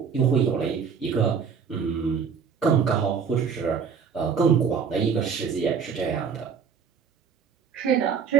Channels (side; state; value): left; quieter; 6.6 dB